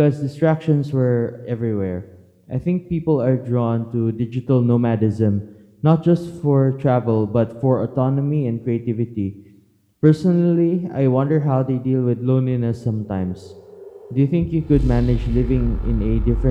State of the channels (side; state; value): both; identical; correlation 1.00